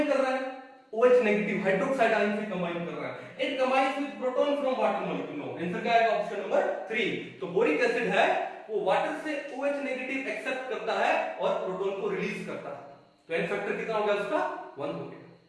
कर रहा है OH नेगेटिव हाइड्रोक्साइड आयन से कंबाइन कर रहा है। It combines with proton from water molecule. No, answer क्या आएगा? Option number 3। तो बोरिक एसिड है वो वाटर से OH नेगेटिव एक्सेप्ट करता है और प्रोटॉन को रिलीज करता है। तो एन फैक्टर कितना हो गया उसका? 1 हो गया।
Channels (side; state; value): both; identical; correlation 1.00